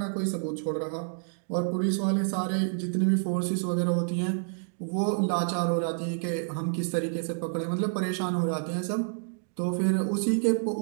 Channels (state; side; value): silent; left; digital silence